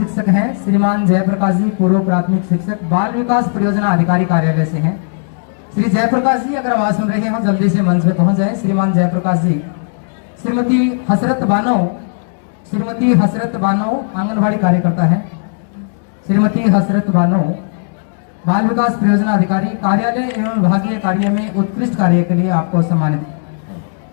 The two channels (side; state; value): right; silent; digital silence